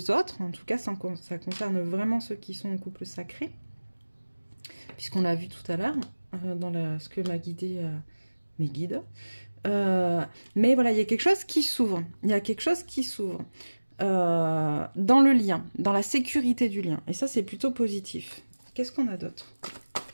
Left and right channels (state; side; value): inverted; both; correlation -1.00